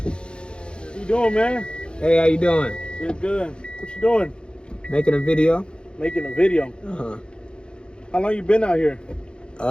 you doing, man? Hey, how you doing? Good. What you doing? Making a video. Making a video. Uh-huh. How long you been out here?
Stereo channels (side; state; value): right; late; 0.053 ms